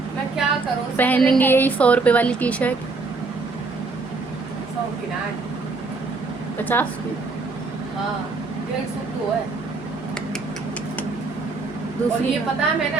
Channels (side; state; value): left; quieter; 3.9 dB